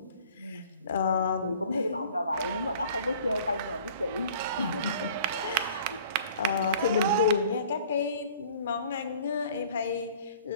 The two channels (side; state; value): both; inverted; correlation -0.50